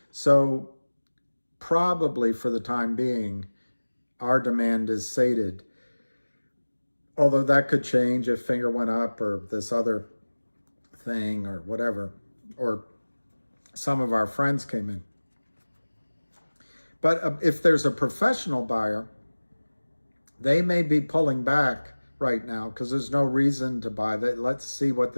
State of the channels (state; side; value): inverted; both; correlation -1.00